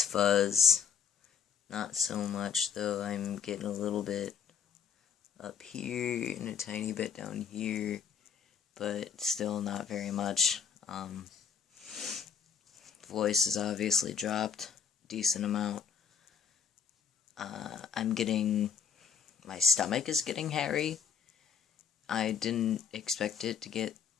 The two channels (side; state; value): right; quieter; 6.9 dB